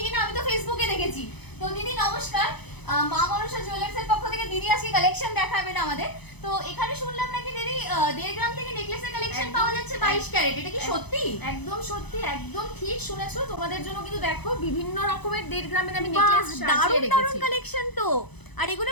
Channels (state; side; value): late; right; 0.99 ms